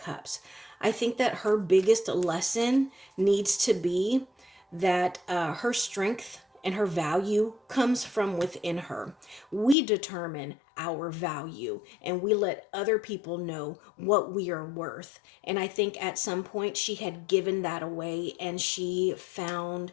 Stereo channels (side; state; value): right; drops out; at 9.8 s